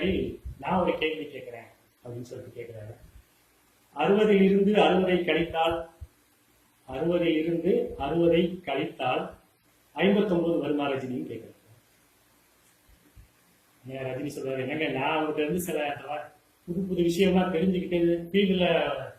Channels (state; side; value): identical; both; correlation 1.00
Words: நான் ஒரு கேள்வி கேட்கிறேன் அப்படின்னு சொல்லிட்டு கேட்கிறாரு. 60 இருந்து 60 கழித்தால் 60 இருந்து 60 கழித்தால் 59 வருமா ரஜினின்னு கேட்கிறாரு. ரஜினி சொல்றாரு, என்னங்க நான் அவங்ககிட்ட இருந்து சில புது விஷயம்லாம் தெரிஞ்சுக்கிட்டு ஃபீல்டுல